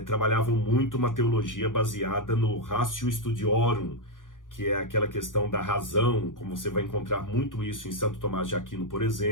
trabalhavam muito uma teologia baseada no ratio studiorum, que é aquela questão da razão, como você vai encontrar muito isso em Santo Tomás de Aquino, por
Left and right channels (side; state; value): right; late; 0.88 ms